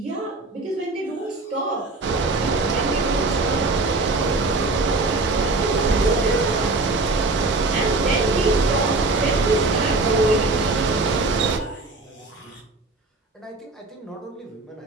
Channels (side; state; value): left; quieter; 3.3 dB